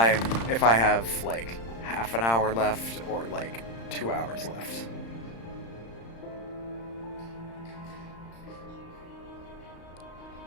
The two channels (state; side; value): late; right; 35 ms